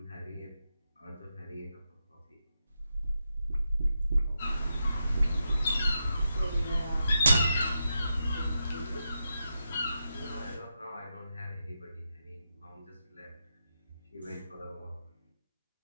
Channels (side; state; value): both; inverted; correlation -0.86